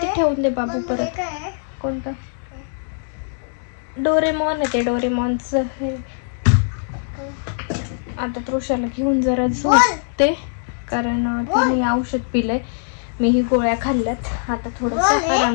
ठेवून दे बाबू. परत कोणतं डोरेमॉन आहे ते, डोरेमॉनचं हे. आता तृषाला घेऊन जरा झोपते, कारण तिने औषध पिलंय, मीही गोळ्या खाल्ल्यात. आता थोडंसं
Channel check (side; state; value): right; silent; digital silence